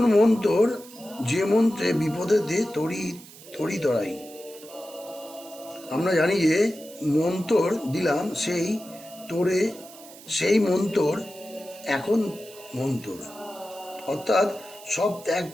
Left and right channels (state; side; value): noise; right; hiss, 19 dB below the sound